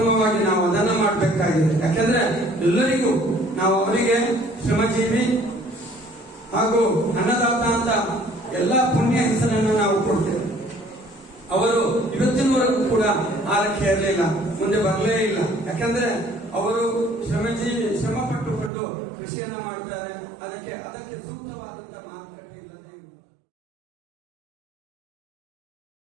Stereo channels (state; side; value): drops out; left; at 18.7 s